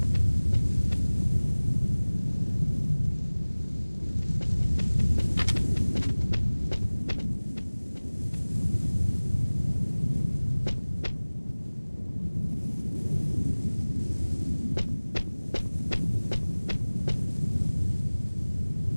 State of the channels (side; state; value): both; inverted; correlation -1.00